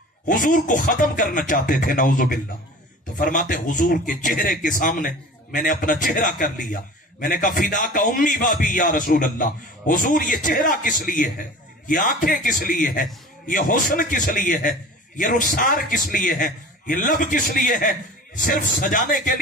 حضور کو ختم کرنا چاہتے تھے، نعوذ باللہ۔ تو فرماتے حضور کے چہرے کے سامنے میں نے اپنا چہرہ کر لیا۔ میں نے کہا فدا کا امی بابی یا رسول اللہ، حضور یہ چہرہ کس لیے ہے، یہ آنکھیں کس لیے ہے، یہ حسن کس لیے ہے، یہ رخسار کس لیے ہے، یہ لب کس لیے ہے؟ صرف سجانے کے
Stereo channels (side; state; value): both; normal; correlation 0.40